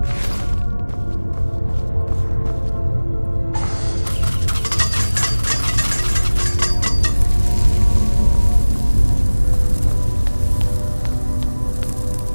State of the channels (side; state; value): both; inverted; correlation -1.00